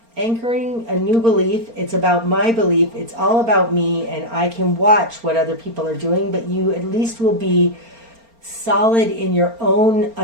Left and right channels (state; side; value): late; left; 4.3 ms